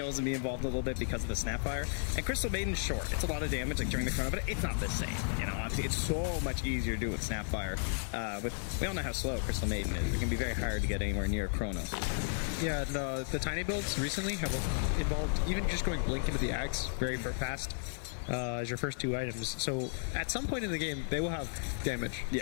and be involved a little bit because of the Snapfire. And Crystal Maiden's short. It's a lot of damage like during the chrono, but it's not the same. You know, obviously it's so much easier to do with Snapfire. We all know how slow Crystal Maiden is. It can be very hard to get anywhere near chrono. Yeah, the tiny builds recently have involved even just going Blink into the Axe very fast. As your first two items. So at some point in the game, they will have damage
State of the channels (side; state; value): right; silent; 55 dB below the other